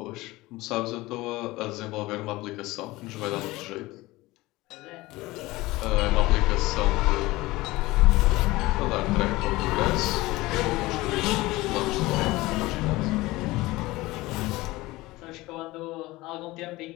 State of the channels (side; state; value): right; quieter; 19.8 dB